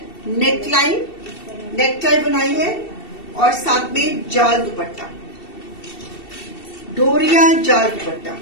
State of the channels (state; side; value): late; right; 2.7 ms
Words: नेक टाई बनाई है और साथ में जाल दुपट्टा, डोरिया जाल दुपट्टा।